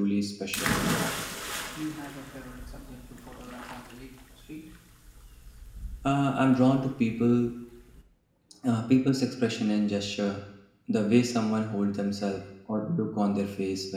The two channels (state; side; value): identical; both; correlation 1.00